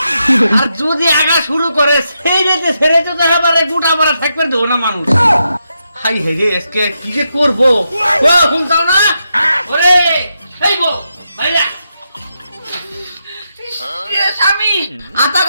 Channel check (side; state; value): both; inverted; correlation -0.84